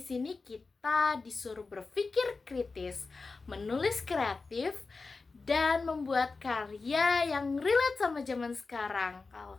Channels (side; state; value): right; quieter; 4.1 dB